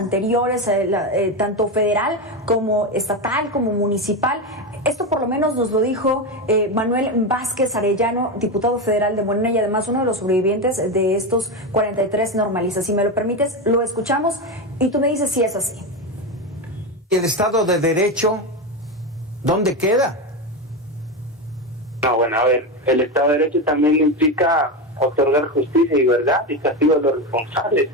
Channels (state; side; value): normal; both; correlation 0.15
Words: tanto federal como estatal como municipal. Esto por lo menos nos lo dijo Manuel Vázquez Arellano, diputado federal de Morena y además uno de los sobrevivientes de estos 43 normalistas. Si me lo permites, lo escuchamos y tú me dices si es así. ¿El Estado de Derecho dónde queda? No, bueno, a ver, el Estado de Derecho también implica otorgar justicia y verdad y castigo a los responsables.